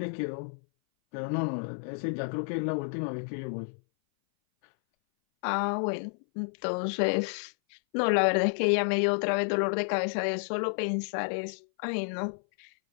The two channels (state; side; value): silent; right; 58 dB below the other